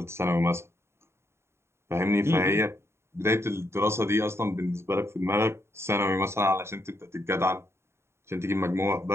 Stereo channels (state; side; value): late; left; 0.13 ms